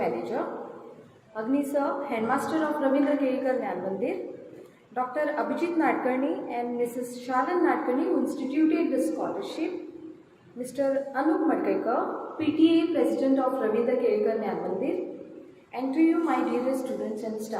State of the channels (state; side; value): identical; both; correlation 1.00